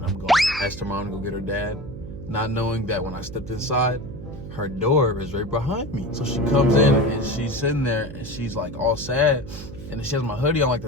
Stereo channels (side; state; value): right; noise; hum, 12 dB below the sound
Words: I'm going. Asked her mom to go get her dad, not knowing that when I stepped inside, her door is right behind me. So she comes in and she's sitting there and she's like all sad, and she has my hoodie on like